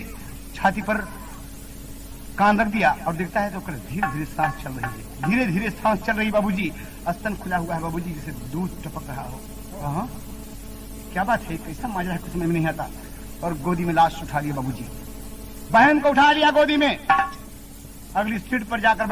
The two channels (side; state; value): both; identical; correlation 1.00